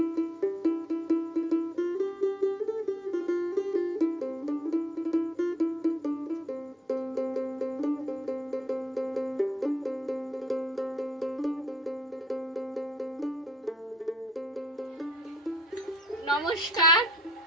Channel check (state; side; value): normal; both; correlation 0.68